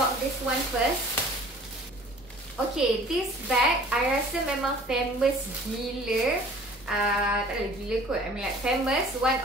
this one first. Okay, this bag I rasa memang famous gila. Tak ada gila kot, I mean like famous, one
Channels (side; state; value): both; normal; correlation 0.50